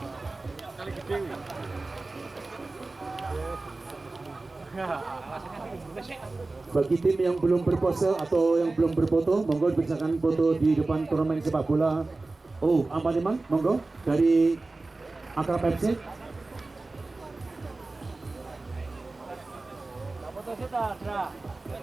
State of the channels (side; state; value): left; quieter; 3.3 dB